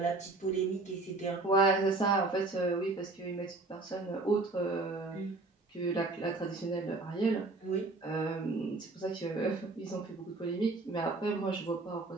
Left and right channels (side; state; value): left; quieter; 3.3 dB